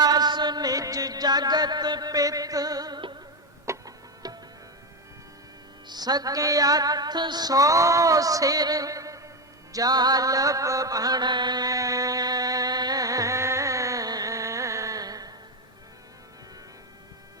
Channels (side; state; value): both; normal; correlation 0.10